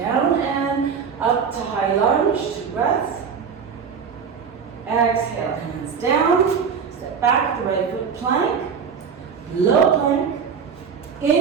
and up to high lunge, 2 breaths. Exhale, hands down, step back, the right foot plank, low plank.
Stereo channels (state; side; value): quieter; left; 6.4 dB